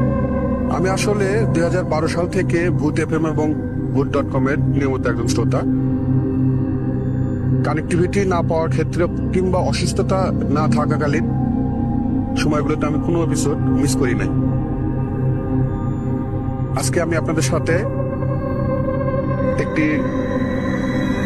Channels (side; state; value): both; identical; correlation 1.00